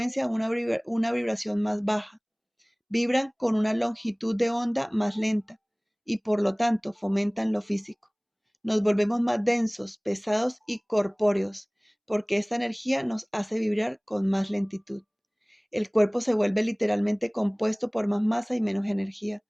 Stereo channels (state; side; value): identical; both; correlation 1.00